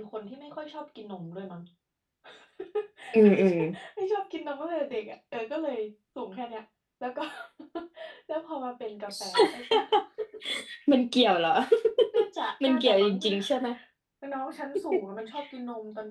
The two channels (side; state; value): both; identical; correlation 1.00